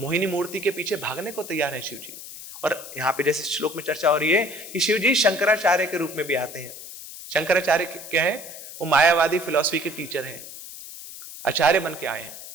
मूर्ति के पीछे भागने को तैयार है शिव जी। और यहां पे जैसे श्लोक में चर्चा हो रही है कि शिव जी शंकराचार्य के रूप में भी आते हैं। शंकराचार्य क्या है? वो मायावादी फिलॉसफी के टीचर हैं, आचार्य बन के आए हैं।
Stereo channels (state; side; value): noise; left; hiss, 13 dB below the sound